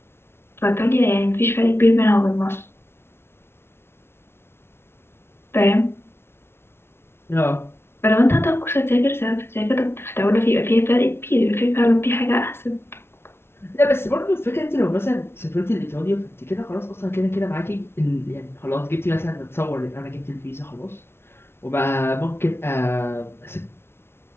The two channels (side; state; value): right; late; 0.12 ms